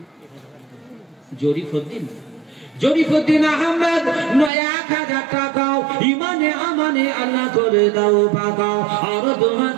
জরিফুদ্দিন জরিফুদ্দিন আহমেদ 1000 টাকাও ইমানে আমানে আল্লাহ করে দাও পাকাও আর দোয়া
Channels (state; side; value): drops out; left; at 4.5 s